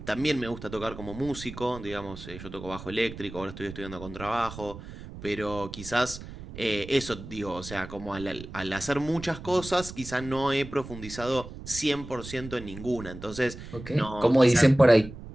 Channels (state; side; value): noise; right; rumble, 13 dB below the sound